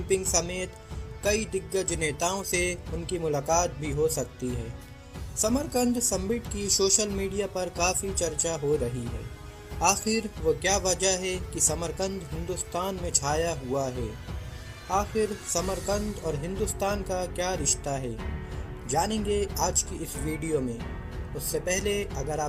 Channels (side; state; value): both; identical; correlation 1.00